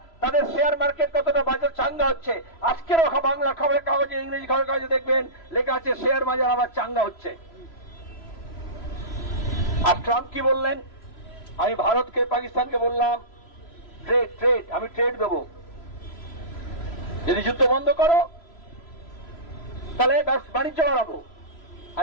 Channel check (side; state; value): right; late; 3.0 ms